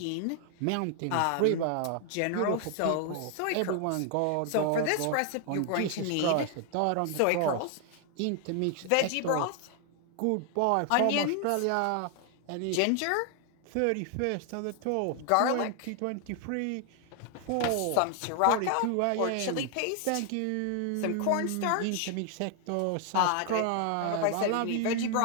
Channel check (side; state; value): both; different; correlation 0.00